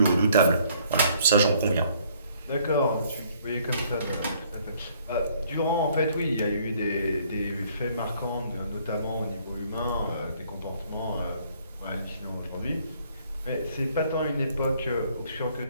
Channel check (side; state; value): both; inverted; correlation -0.62